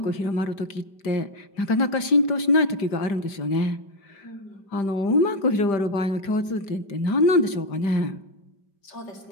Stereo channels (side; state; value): right; late; 5.1 ms